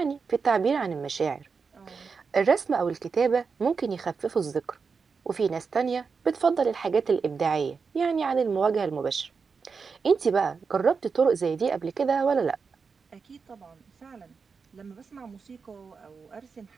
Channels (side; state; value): left; quieter; 5.3 dB